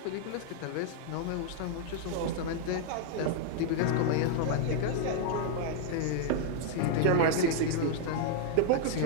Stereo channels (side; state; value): both; different; correlation 0.00